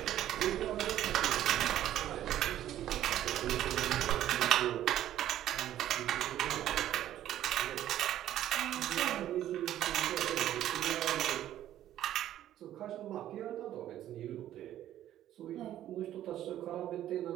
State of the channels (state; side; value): quieter; left; 12.3 dB